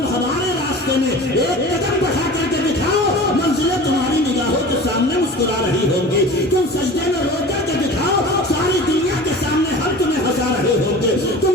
ہمارے راستے میں ایک قدم بڑھا کر کے دکھاؤ، منزلیں تمہاری نگاہوں کے سامنے مسکرا رہی ہوں گی، تم سجدے میں رو کر کے دکھاؤ، ساری دنیا کے سامنے ہم تمہیں ہنسا رہے ہوں گے،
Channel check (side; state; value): both; normal; correlation 0.38